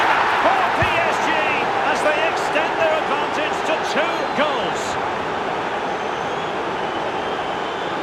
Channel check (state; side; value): identical; both; correlation 1.00